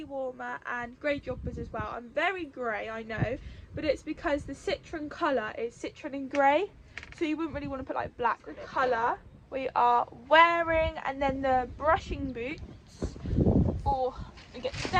warmer and grey joggers as well. I'm very grey, I know, but it's because the citron colour is citron and grey, so you wouldn't really want to put like black. The colour we are wearing, and then the brushing boots, or we get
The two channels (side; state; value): both; identical; correlation 1.00